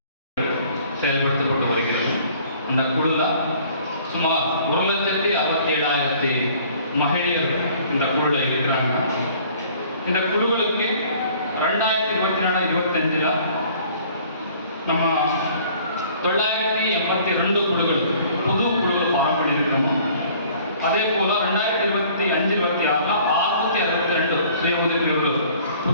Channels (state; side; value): inverted; both; correlation -0.54